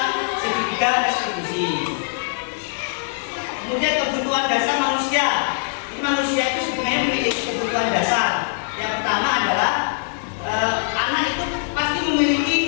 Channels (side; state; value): right; silent; digital silence